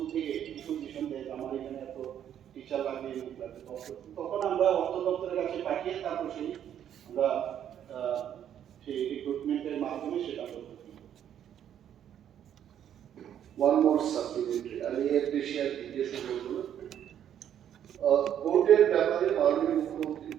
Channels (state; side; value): quieter; left; 9.8 dB